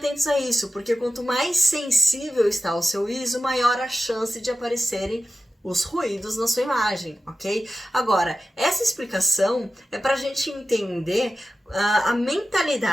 a isso, porque quanto mais sensível está o seu ISO, maior a chance de aparecerem os ruídos na sua imagem, ok? Agora, essa explicação é para a gente entender a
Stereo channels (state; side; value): normal; both; correlation 0.94